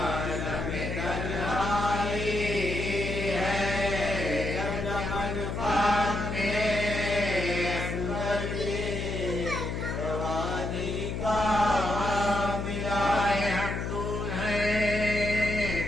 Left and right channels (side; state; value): left; noise; hum, 3 dB below the sound